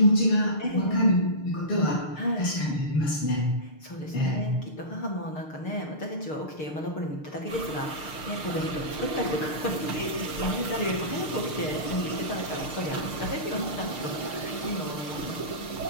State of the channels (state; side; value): late; right; 6.6 ms